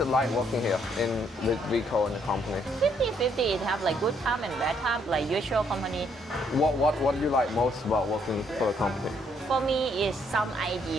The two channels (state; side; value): normal; both; correlation 0.70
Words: it like working here with Vico and the company? 50-50, it have like good time and bad time, like usual company. What do you like most about working for the company? For me, is some